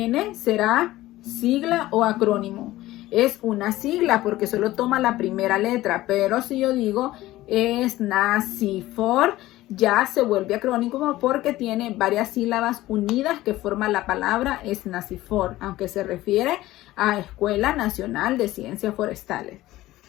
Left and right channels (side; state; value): right; quieter; 16.5 dB